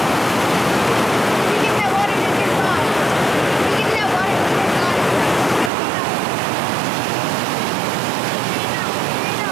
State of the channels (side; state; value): left; drops out; at 5.7 s